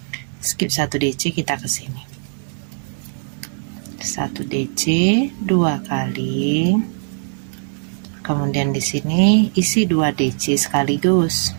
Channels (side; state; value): left; silent; digital silence